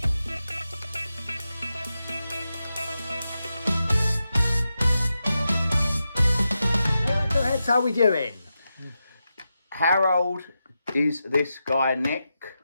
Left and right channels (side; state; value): both; inverted; correlation -0.89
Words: How are we doing? How old is this guy, Nick?